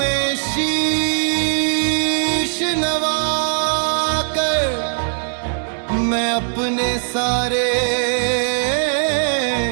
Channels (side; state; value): left; silent; digital silence